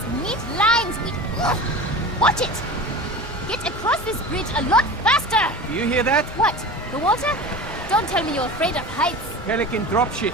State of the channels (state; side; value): normal; both; correlation 0.33